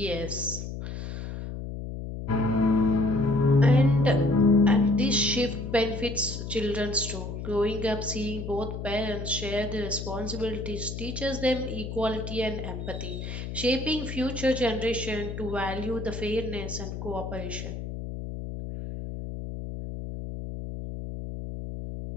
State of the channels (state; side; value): noise; left; hum, 7 dB below the sound